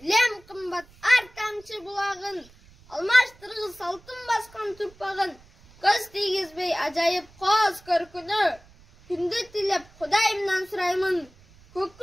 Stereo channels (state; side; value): noise; right; rumble, 26 dB below the sound